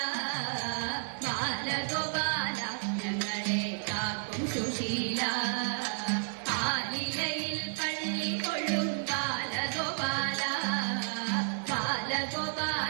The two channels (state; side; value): silent; left; digital silence